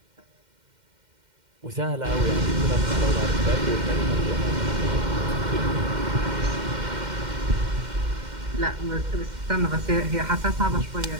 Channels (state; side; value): late; left; 2.1 ms